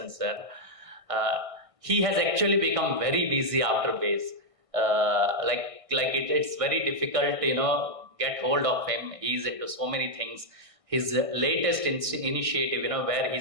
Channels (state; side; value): late; left; 1.6 ms